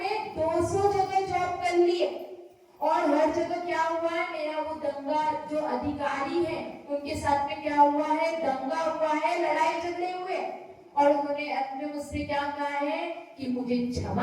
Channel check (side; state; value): both; identical; correlation 1.00